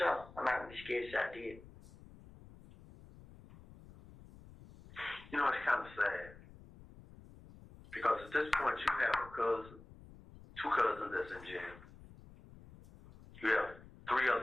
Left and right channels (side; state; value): left; noise; rumble, 20 dB below the sound